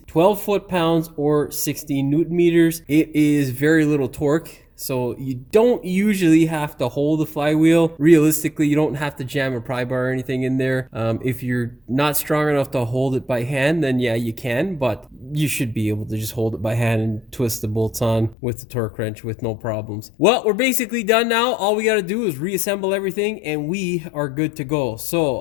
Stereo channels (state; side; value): drops out; right; at 18.4 s